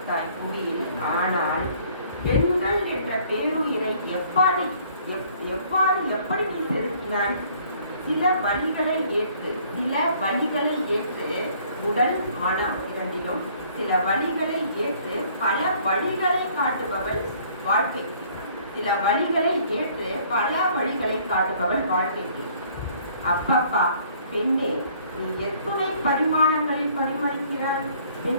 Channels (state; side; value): inverted; both; correlation -0.58